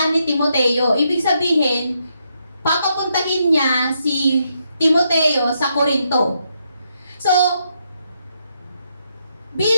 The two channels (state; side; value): inverted; both; correlation -0.78